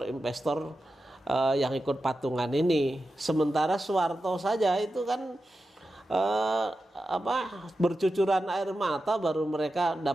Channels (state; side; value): normal; both; correlation 0.91